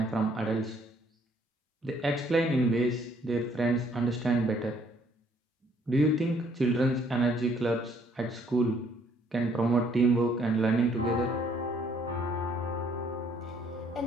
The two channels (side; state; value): both; normal; correlation 0.64